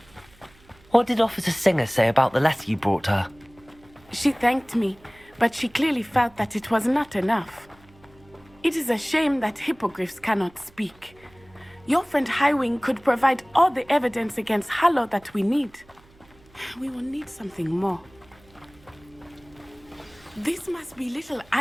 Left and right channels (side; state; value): right; noise; hum, 28 dB below the sound